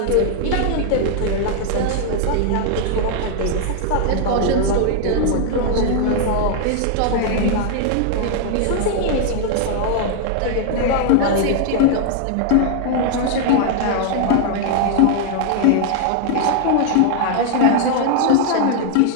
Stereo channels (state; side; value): different; both; correlation 0.00